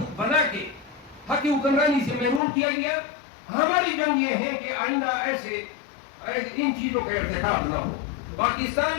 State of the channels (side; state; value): right; drops out; at 2.4 s